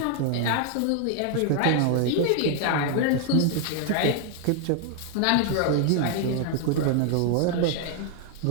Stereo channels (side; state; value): both; different; correlation 0.00